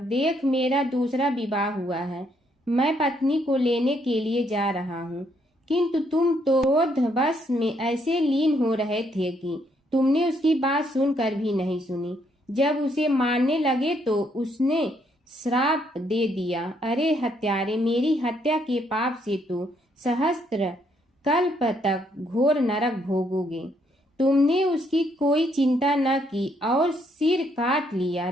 मेरा दूसरा विवाह हुआ है। मैं पत्नी को लेने के लिए जा रहा हूँ। किंतु तुम तो क्रोधवश में ऐसे लीन हो रहे थे कि तुमने उसकी बात सुनकर भी नहीं सुनी। जब उसे मारने लगे तो उसने श्राप दे दिया, अरे हत्यारे, मेरी हत्या के पाप से तो सहस्त्र कल्प तक घोर नरक भोगोगे। तुमने उसकी कोई चिंता न की और सिर काट लिया।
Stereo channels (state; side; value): normal; both; correlation 0.72